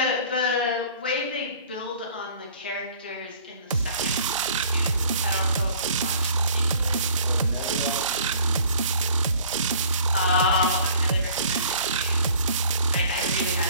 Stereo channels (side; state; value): both; inverted; correlation -0.52